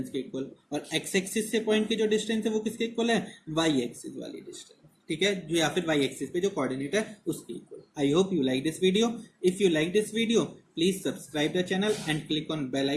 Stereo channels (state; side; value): identical; both; correlation 1.00